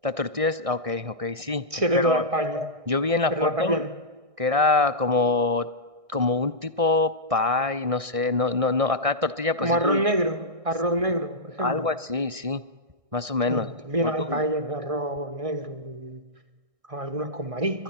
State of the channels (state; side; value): late; left; 1.6 ms